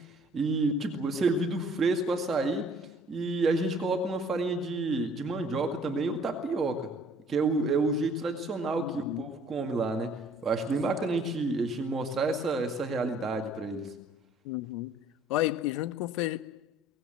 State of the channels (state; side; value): normal; both; correlation 0.56